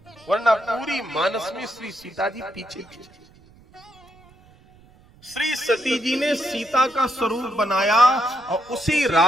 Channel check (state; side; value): noise; right; rumble, 27 dB below the sound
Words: वरना पूरी मानस में श्री सीता जी पीछे पीछे। श्री सती जी ने सीता का स्वरूप बनाया और उसी